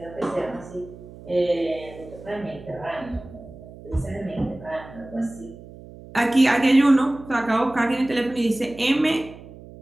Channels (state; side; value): noise; right; hum, 17 dB below the sound